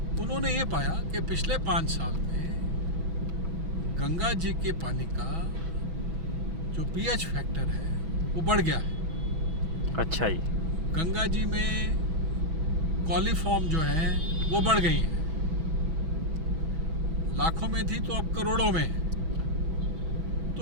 उन्होंने ये पाया कि पिछले 5 साल में गंगा जी के पानी का जो पीएच फैक्टर है वो बढ़ गया है। अच्छा जी। गंगा जी में कॉलीफॉर्म जो है वो बढ़ गई है, लाखों में थी तो अब करोड़ों में है।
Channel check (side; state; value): left; late; 6.2 ms